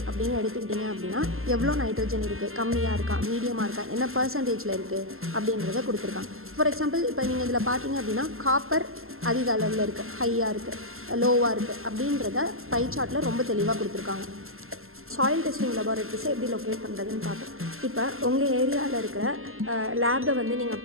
அப்படின்னு எடுத்துக்கிட்டிங்க அப்படின்னா எவ்வளோ நைட்ரஜன் இருக்குது, கம்மியாக இருக்கா, மீடியமாக இருக்கா, என்ன பர்சன்டேஜில் இருக்குது அப்படின்றத கொடுத்துருக்காங்க. ஃபார் எக்ஸாம்பிள் இப்போ நீங்கள் இதில் பார்த்தீங்க அப்படின்னா காப்பர் அதிக அளவில் இருக்குது, ஹையாக இருக்குது, லோவாக இருக்குது அப்படின்றத பை சார்ட்டில் ரொம்ப தெளிவாக கொடுத்துருக்காங்க. சாயில் டெஸ்டிங் லெபார்ட்டரிஸை எப்படி லொக்கேட் பண்ணுறதுன்னு பார்ப்போம். இப்போ உங்கள் ஏரியாவில் இருக்கிற லேபை வந்து நீங்கள்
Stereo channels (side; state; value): left; late; 0.62 ms